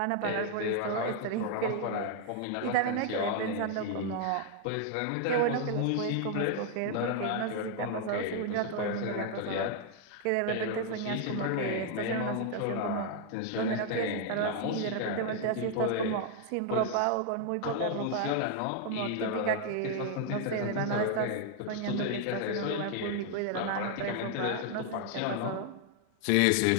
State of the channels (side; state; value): both; different; correlation 0.00